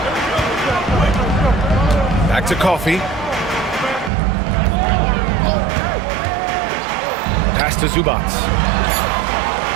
Back to Coffey. Pass to Zubac.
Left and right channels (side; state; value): left; drops out; at 4.1 s